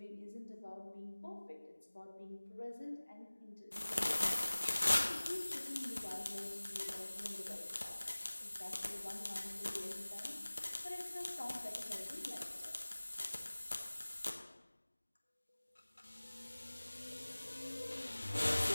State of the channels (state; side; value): inverted; both; correlation -1.00